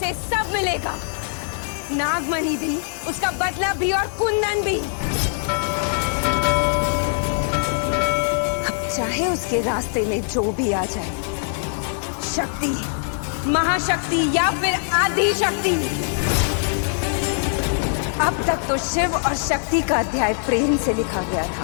सब मिलेगा। नागमणि भी, उसका बदला भी और कुंदन भी। अब चाहे उसके रास्ते में जो भी आ जाए, शक्ति, महाशक्ति या फिर आदि शक्ति। अब तक तो शिव और शक्ति का अध्याय प्रेम से लिखा गया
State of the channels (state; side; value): silent; right; 62 dB below the other